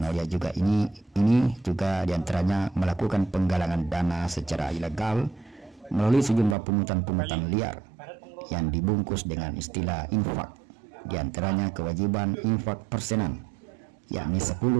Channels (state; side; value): drops out; left; at 6.6 s